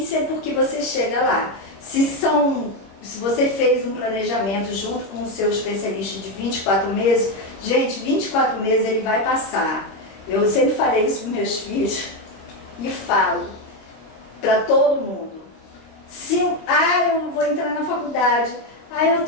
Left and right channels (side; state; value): right; late; 25 ms